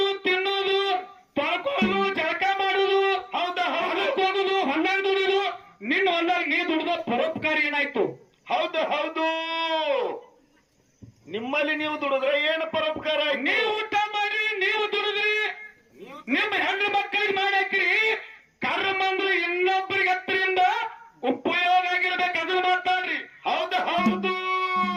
ತಿನ್ನೋದು, ತೊಳ್ಕೊಳ್ಳೋದು, ಜಳಕ ಮಾಡೋದು, ಹೌದು ಹೌದು. ಹೋಗುದು, ಹೊಲ್ದಾಗ ದುಡಿದು, ನಿನ್ನ ಹೊಲ್ದಾಗ ನೀ ದುಡಿದ ಪರೋಪಕಾರ ಏನಾಯ್ತು? ಹೌದು ಹೌದು. ನಿಮ್ಮಲ್ಲಿ ನೀವು ದುಡಿದ್ರೆ ಏನು ಪರೋಪಕಾರ? ನೀವು ಊಟ ಮಾಡ್ರಿ, ನೀವು ದುಡಿದ್ರಿ, ನಿಮ್ಮ ಹೆಣ್ಣು ಮಕ್ಕಳಿಗೆ ಮಾಡಾಕ್ರಿ. ಕರ್ಮ ಅಂದ್ರೆ ಇನ್ನೊಬ್ಬರಿಗೆ ಹತ್ತರಿಂದ ಉಪಯೋಗ ಆಗಿರ್ಬೇಕು, ಅದನ್ನ ಮಾತಾಡ್ರಿ. ಹೌದು ಹೌದು.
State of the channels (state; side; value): identical; both; correlation 1.00